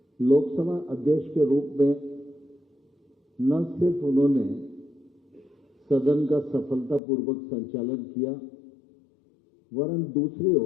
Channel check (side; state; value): right; drops out; at 7.0 s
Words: लोकसभा अध्यक्ष के रूप में न सिर्फ उन्होंने सदन का सफलतापूर्वक संचालन किया, वरन दूसरी